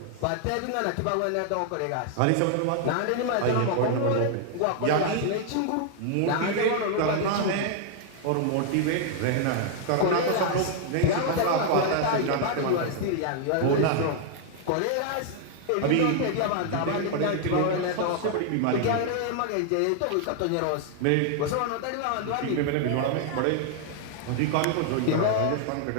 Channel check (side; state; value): both; different; correlation 0.00